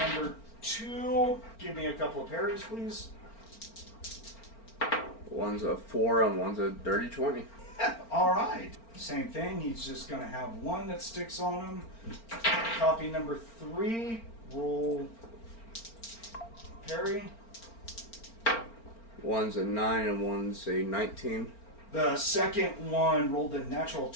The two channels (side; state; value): right; late; 4.4 ms